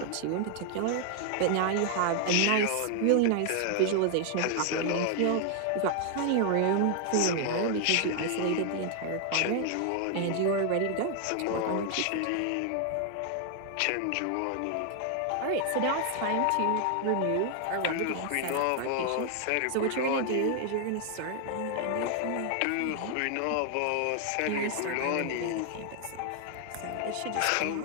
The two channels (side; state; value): both; different; correlation 0.00